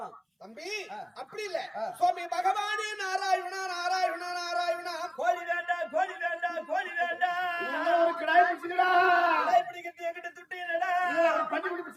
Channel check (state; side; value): identical; both; correlation 1.00